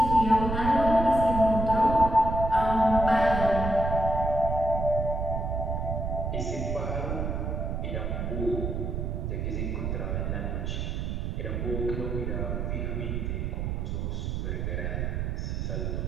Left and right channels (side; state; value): right; noise; rumble, 2 dB below the sound